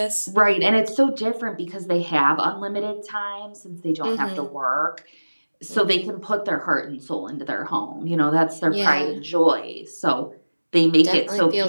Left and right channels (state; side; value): inverted; both; correlation -1.00